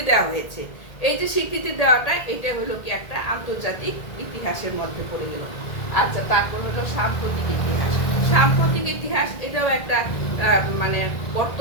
দেওয়া হয়েছে। এই যে স্বীকৃতি দেওয়াটা, এটা হলো কি একটা আন্তর্জাতিক ইতিহাসের মধ্যে পড়ে গেল। আচ্ছা, তারপর হলো সাম্প্রতিক ইতিহাস। সাম্প্রতিক ইতিহাস এটাও একটা মানে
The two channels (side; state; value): right; late; 1.8 ms